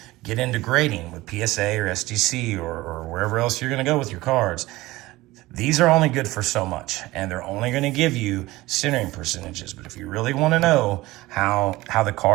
get into grading with PSA or SGC or wherever else you're going to go with your cards, these are only good for so much, and they're only going to give you centering percentages. But if you really want to know how the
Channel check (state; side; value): quieter; left; 18.9 dB